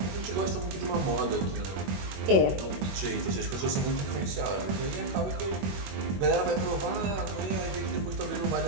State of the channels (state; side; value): late; left; 21 ms